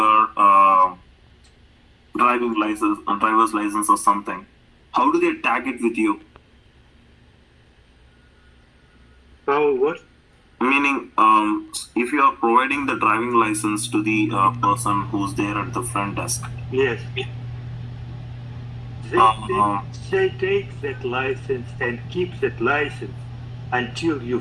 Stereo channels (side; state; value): both; identical; correlation 1.00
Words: driving license, driver's license or something, how do they tag it with you? How what? Meaning, if you are providing the driving license to the person who's there at the front desk, Yes. Uh-huh. They take that license and keep that license until you